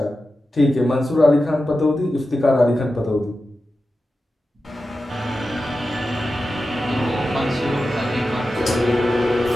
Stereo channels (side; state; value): both; normal; correlation 0.92